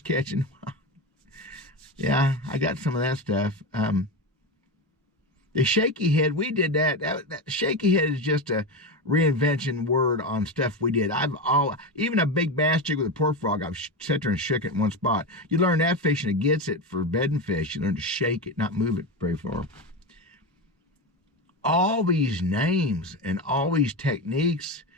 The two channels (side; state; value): both; normal; correlation 0.18